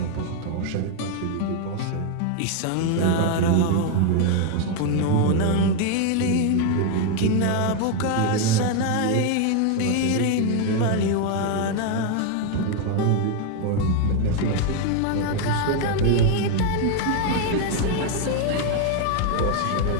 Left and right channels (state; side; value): different; both; correlation 0.01